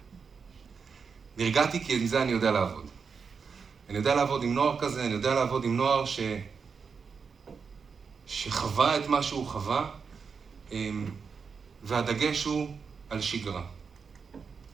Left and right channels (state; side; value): quieter; left; 5.7 dB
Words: נרגעתי כי עם זה אני יודע לעבוד. אני יודע לעבוד עם נוער כזה, אני יודע לעבוד עם נוער שחווה את מה שהוא חווה, והדגש הוא על שגרה.